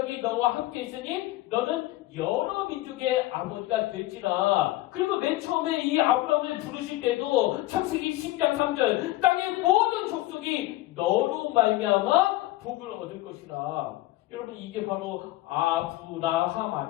너와 함께 있으니 너는 여러 민족의 아버지가 될지라. 그리고 맨 처음에 이 아브라함을 부르실 때도 창세기 10장 3절, 땅의 모든 족속이 너로 말미암아 복을 얻을 것이라. 여러분, 이게 바로 아브라함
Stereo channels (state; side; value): quieter; right; 17.3 dB